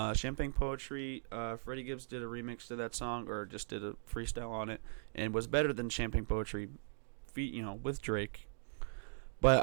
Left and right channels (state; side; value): silent; left; digital silence